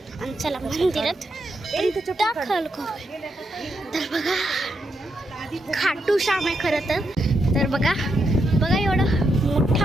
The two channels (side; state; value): both; normal; correlation 0.82